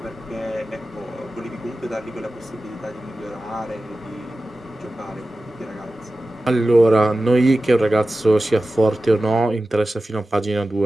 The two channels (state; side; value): normal; both; correlation 0.95